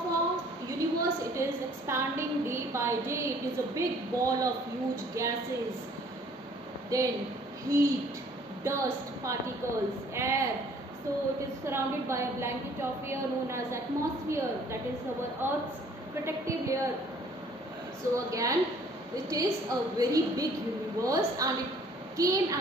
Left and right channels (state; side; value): normal; both; correlation 0.57